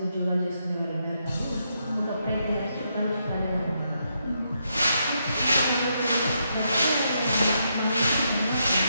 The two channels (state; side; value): inverted; both; correlation -0.80